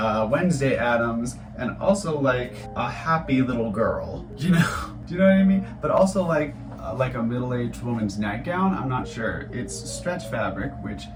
Wednesday Addams, and also like a happy little girl. You know? Do you know what I mean? But also like a middle-aged woman's nightgown. I'm not sure. It's stretch fabric, which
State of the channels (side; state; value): both; identical; correlation 1.00